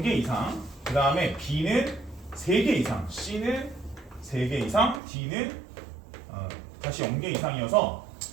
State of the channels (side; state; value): left; drops out; at 5.0 s